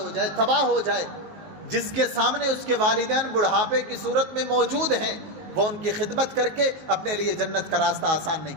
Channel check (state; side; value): late; left; 19 ms